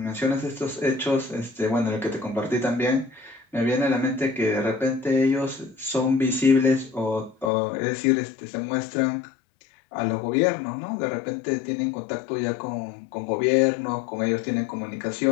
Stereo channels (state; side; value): drops out; right; at 7.5 s